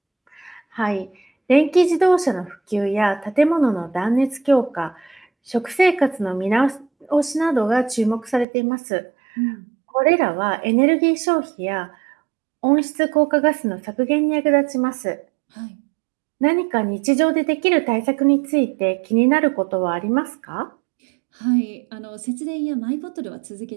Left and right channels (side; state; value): left; drops out; at 8.5 s